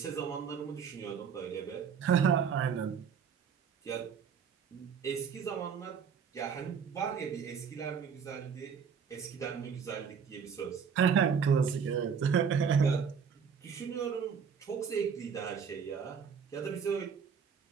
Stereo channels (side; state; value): left; quieter; 6.7 dB